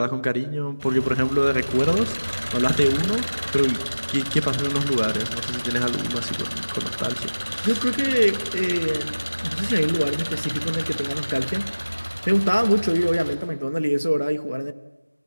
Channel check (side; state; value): both; inverted; correlation -1.00